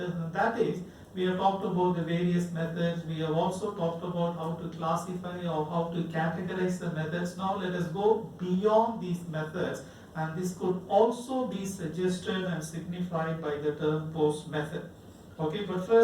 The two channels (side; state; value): both; identical; correlation 1.00